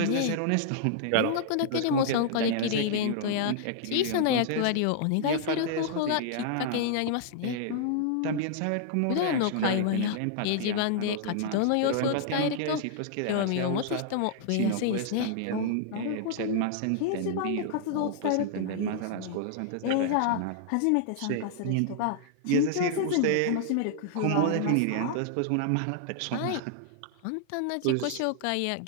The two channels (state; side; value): different; both; correlation -0.01